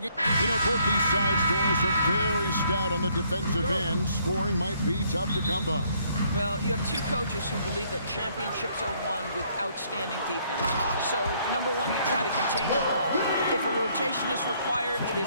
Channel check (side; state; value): both; inverted; correlation -0.66